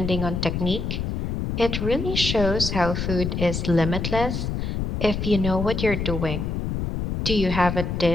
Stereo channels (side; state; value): left; noise; rumble, 2 dB below the sound